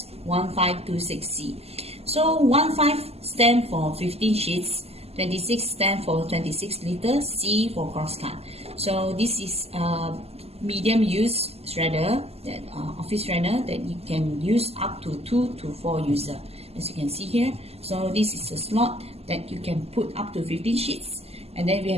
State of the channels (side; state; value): left; late; 0.29 ms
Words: So 15 stand for 15 sheets, 26 stand for 26 liters, C for crosscut. So this is a medium use shredder, that office shredder that you can use up to 2 to 4 users, as you can see here. So this is a slot that you can put up to 15 sheets, and then we